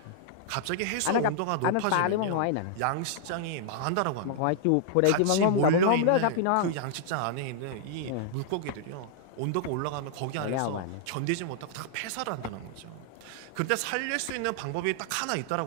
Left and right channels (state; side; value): different; both; correlation -0.01